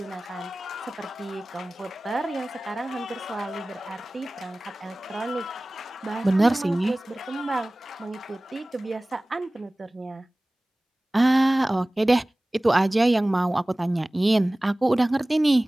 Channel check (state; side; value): normal; both; correlation 0.98